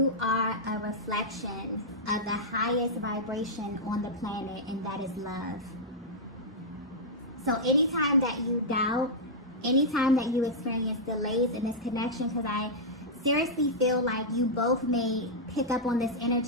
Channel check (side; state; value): both; normal; correlation -0.08